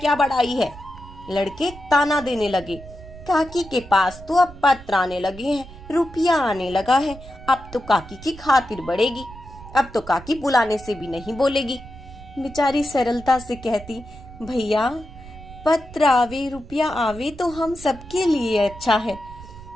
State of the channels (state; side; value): noise; right; rumble, 17 dB below the sound